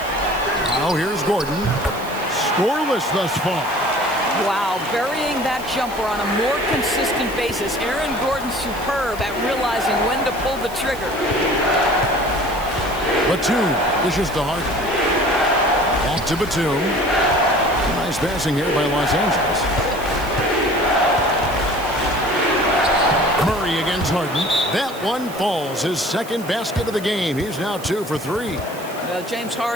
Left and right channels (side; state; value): right; noise; hiss, 17 dB below the sound